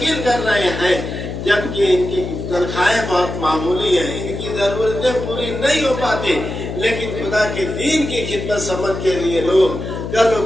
कर रहे हैं, जबकि इनकी तनख्वाहें बहुत मामूली है, इनकी जरूरतें पूरी नहीं हो पाती, लेकिन खुदा के दीन की खिदमत समझ के लिए लोग करो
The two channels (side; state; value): left; noise; hum, 6 dB below the sound